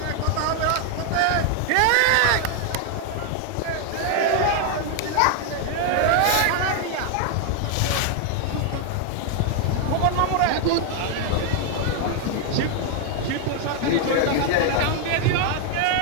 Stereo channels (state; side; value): different; both; correlation 0.00